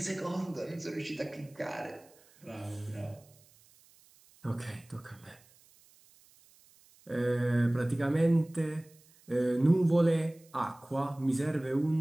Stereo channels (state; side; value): noise; right; hiss, 28 dB below the sound